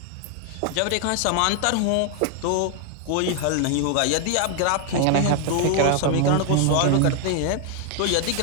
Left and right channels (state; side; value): different; both; correlation 0.00